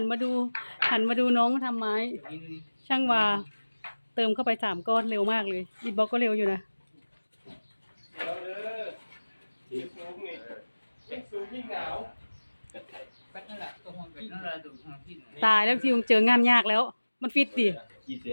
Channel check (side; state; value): both; inverted; correlation -1.00